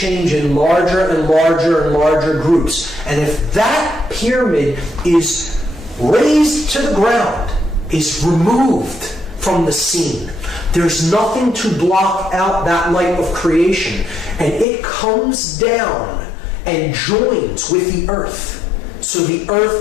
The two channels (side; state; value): right; drops out; at 14.7 s